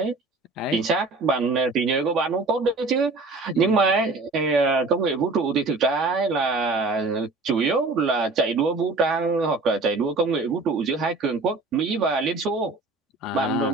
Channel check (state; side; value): quieter; left; 3.5 dB